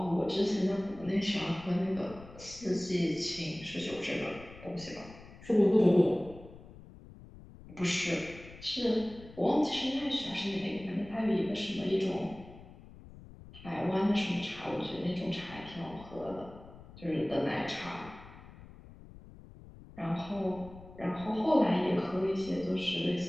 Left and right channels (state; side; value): noise; left; rumble, 18 dB below the sound